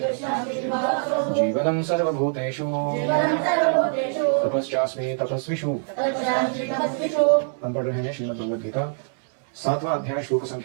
जीवनं सर्वभूतेषु तपश्चास्मि तपस्विषु। हम पढ़ रहे हैं श्रीमद् भगवद गीता 7वां अध्याय श्लोक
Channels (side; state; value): left; silent; digital silence